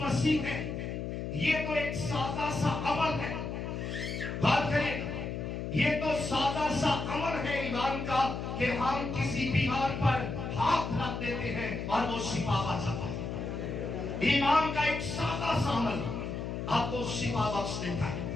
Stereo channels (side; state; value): left; noise; hum, 4 dB below the sound